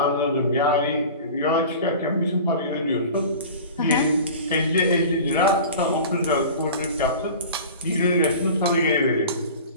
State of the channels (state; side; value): inverted; both; correlation -0.38